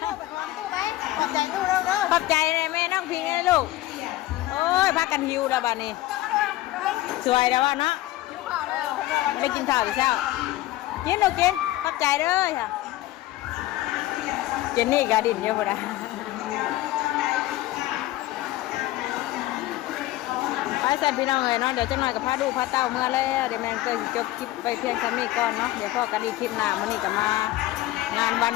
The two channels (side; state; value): right; quieter; 16.3 dB